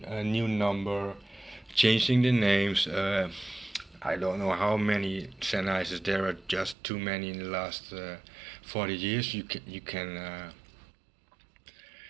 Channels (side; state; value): left; drops out; at 6.8 s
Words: new number, changing the names. I don't know how many Sennheisers there are, just too many in the last 40 years. You can